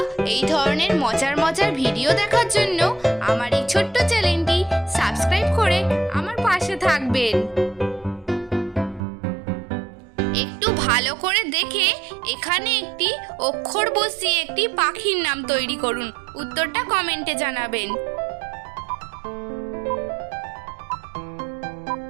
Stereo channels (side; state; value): left; drops out; at 9.0 s